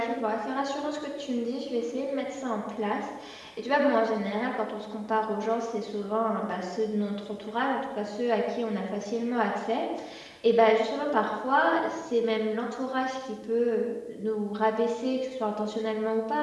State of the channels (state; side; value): identical; both; correlation 1.00